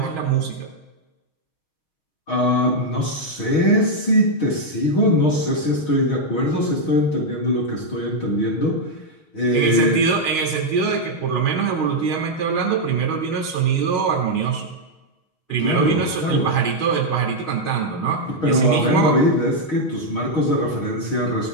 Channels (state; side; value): late; right; 6.3 ms